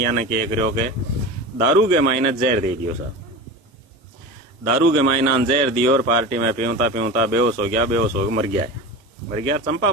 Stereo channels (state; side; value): normal; both; correlation 0.29